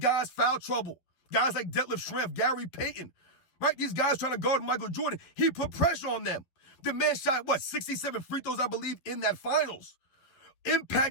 foul trouble. Guys like Detlef Schrempf, Gary Payton, right? These guys trying to guard Michael Jordan. He put pressure on them. The man shot, 67 free throws, I believe, in that finals,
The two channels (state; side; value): late; right; 11 ms